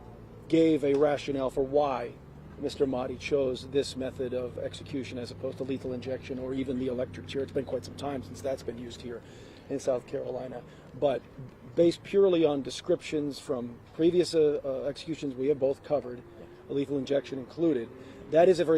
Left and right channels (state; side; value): identical; both; correlation 1.00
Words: gave a rationale for why Mr. Mahdi chose this method of execution as opposed to lethal injection or even the electric chair. It's been quite some time since that's been used here in South Carolina. But based purely on descriptions from previous executions we have both covered, lethal injection included, that is a